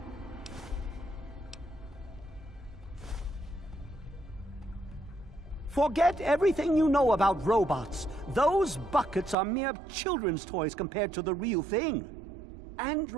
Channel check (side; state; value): left; drops out; at 9.3 s